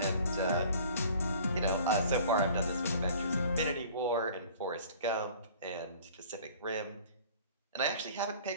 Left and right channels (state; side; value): inverted; both; correlation -0.48